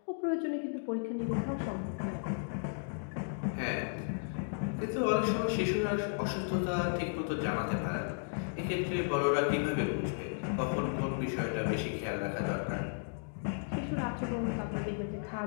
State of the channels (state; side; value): silent; right; digital silence